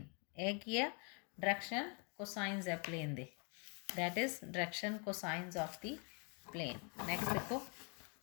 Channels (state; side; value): quieter; right; 36.8 dB